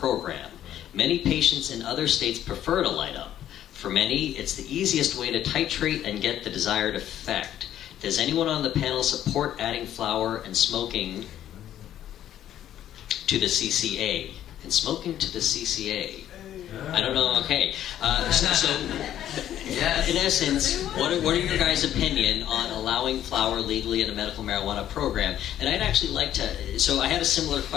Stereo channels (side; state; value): right; quieter; 11.5 dB